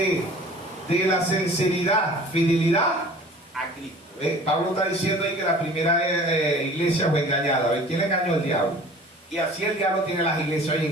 la sinceridad, fidelidad a Cristo. Pablo está diciendo ahí que la primera iglesia fue engañada. ¿Quién engañó? El diablo. Y así el diablo tiene las iglesias hoy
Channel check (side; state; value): both; normal; correlation 0.46